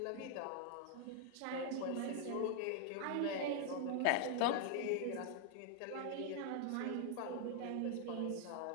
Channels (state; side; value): different; both; correlation 0.00